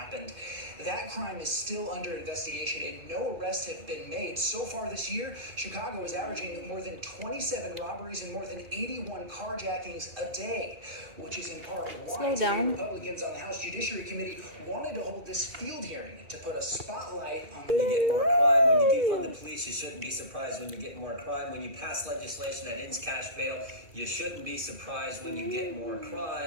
That crime is still under investigation and no arrests have been made. So far this year, Chicago is averaging more than 27 robberies and more than 81 carjackings a day, which is in part why Republicans on the House Judiciary Committee wanted to hold this field hearing to put a spotlight on When you get more crime, when you defund the police, you shouldn't be surprised when you get more crime. When you pass legislation that ends cash bail, you shouldn't be surprised when you get more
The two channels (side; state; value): left; late; 2.4 ms